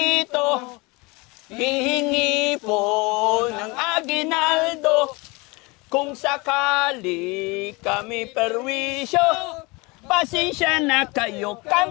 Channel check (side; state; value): right; quieter; 25.9 dB